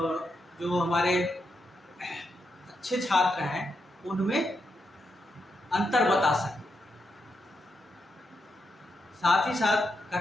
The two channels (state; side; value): normal; both; correlation 0.83